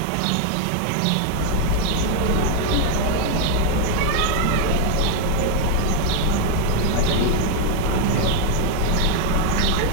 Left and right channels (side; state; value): both; different; correlation 0.01